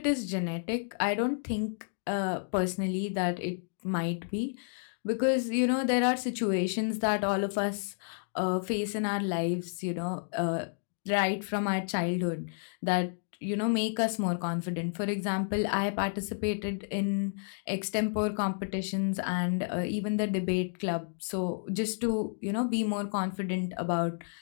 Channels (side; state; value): right; silent; digital silence